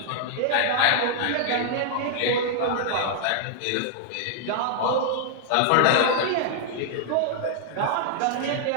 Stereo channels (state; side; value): different; both; correlation -0.01